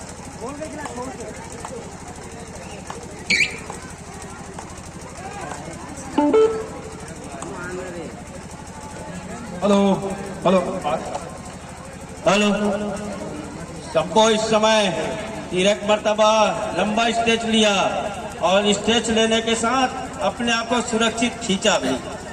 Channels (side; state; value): both; identical; correlation 1.00